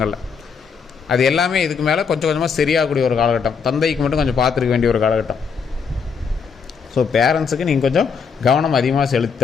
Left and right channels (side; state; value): right; quieter; 5.9 dB